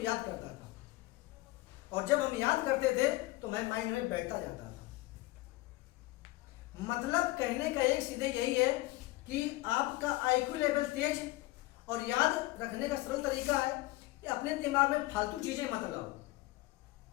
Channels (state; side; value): quieter; right; 19.4 dB